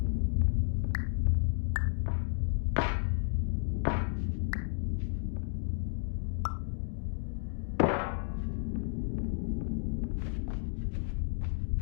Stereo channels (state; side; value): silent; right; digital silence